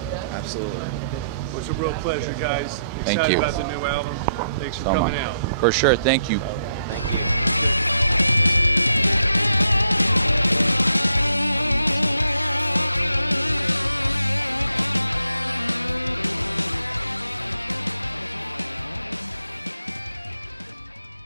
Absolutely. Well, it's a real pleasure, guys. Thank Excited you. about the new album. Thanks for coming out. For sure. Thank you.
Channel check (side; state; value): both; inverted; correlation -0.76